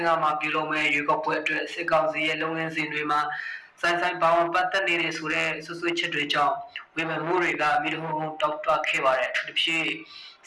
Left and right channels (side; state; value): both; identical; correlation 1.00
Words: မှာပြုလုပ်မဲ့ရွေးကောက်ပွဲအတွက်စစ်ကောင်စီရဲ့လုပ်ငန်းစဉ်တွေမှာဆိုင်ပေါင်းပတ်သက်နေတဲ့ဆိုတဲ့ဆွဆွချက်တွေကြောင့်ဝေဖန်မှုတွေကမိတို့တောက်တွခဲ့ပါတယ်သူတို့ဖြစ်